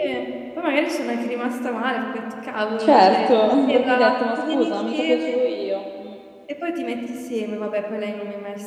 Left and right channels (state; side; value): identical; both; correlation 1.00